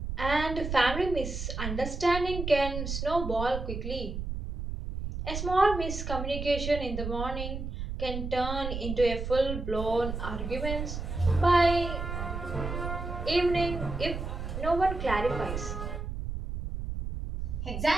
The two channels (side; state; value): right; noise; rumble, 5 dB below the sound